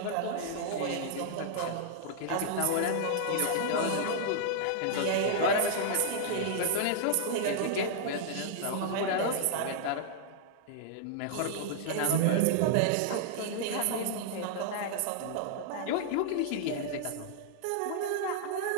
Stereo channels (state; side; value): different; both; correlation -0.01